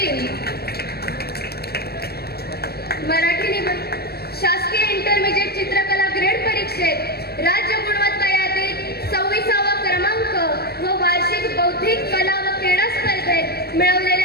मराठी निबंध शासकीय इंटरमिजिएट चित्रकला ग्रेड परीक्षेत राज्य गुणवत्ता यादीत 26वा क्रमांक व वार्षिक बौद्धिक कला व क्रीडा स्पर्धेत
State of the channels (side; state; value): right; late; 0.46 ms